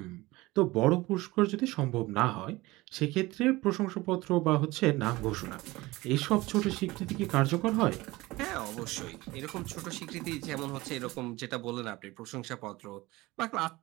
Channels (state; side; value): quieter; left; 20.3 dB